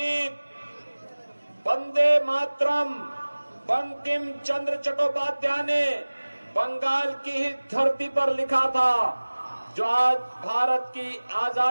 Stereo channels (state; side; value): inverted; both; correlation -1.00